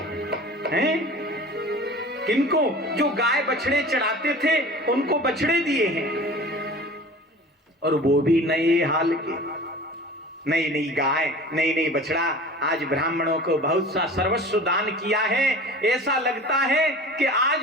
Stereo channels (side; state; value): both; normal; correlation 0.40